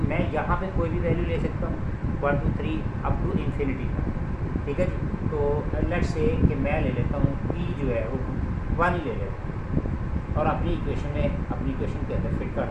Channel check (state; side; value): identical; both; correlation 1.00